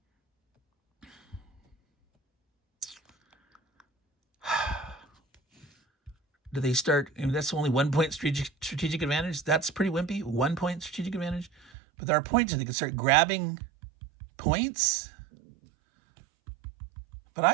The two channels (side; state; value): left; drops out; at 11.7 s